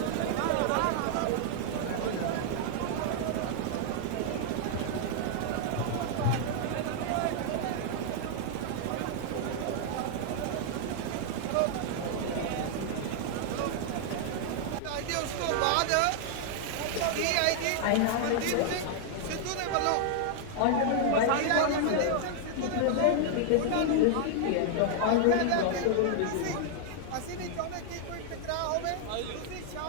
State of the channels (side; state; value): both; different; correlation 0.00